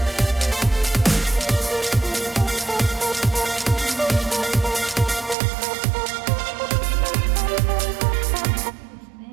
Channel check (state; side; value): drops out; left; at 5.4 s